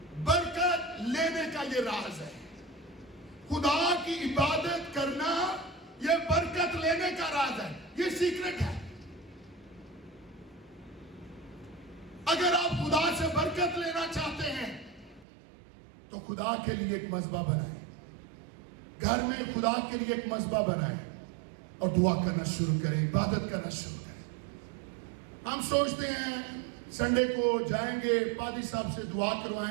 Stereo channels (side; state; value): left; drops out; at 15.2 s